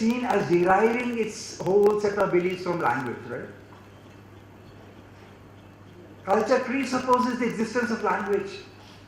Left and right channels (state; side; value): identical; both; correlation 1.00